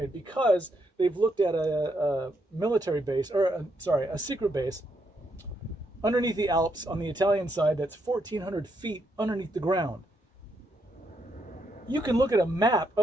because they've looked at a military base, a secret base underneath the Alps on the Italian side that's 1,400 feet underneath the ground. You can look at a map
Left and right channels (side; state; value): both; normal; correlation 0.77